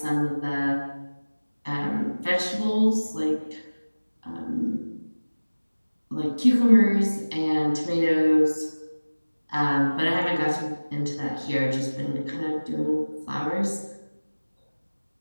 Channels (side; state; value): both; inverted; correlation -1.00